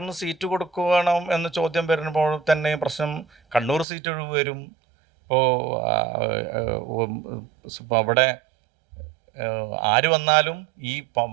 സീറ്റ് കൊടുക്കണം എന്ന ചോദ്യം വരുമ്പോൾ തന്നെ പ്രശ്നം കണ്ണൂർ സീറ്റ് ഒഴിവ് വരും. ഇപ്പോൾ അവിടെ ആര് വന്നാലും ഈ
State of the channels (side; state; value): left; drops out; at 3.9 s